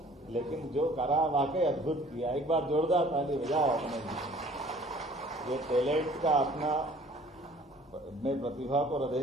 लेकिन जो करा वाकई अद्भुत किया। एक बार जोरदार ताली बजाओ अपने ये टैलेंट का अपना। मैं प्रतिभा को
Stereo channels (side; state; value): both; normal; correlation 0.52